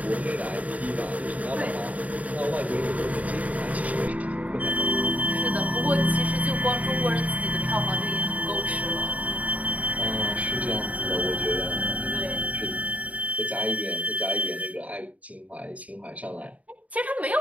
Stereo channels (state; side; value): late; left; 0.070 ms